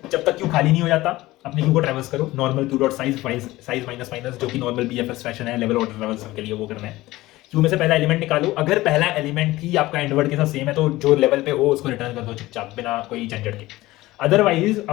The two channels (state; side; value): quieter; right; 18.1 dB